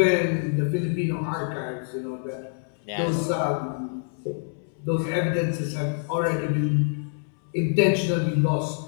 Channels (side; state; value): right; silent; 61 dB below the other